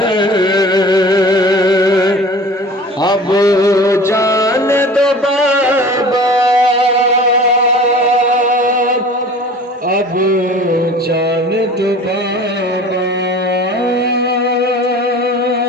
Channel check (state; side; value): normal; both; correlation 0.42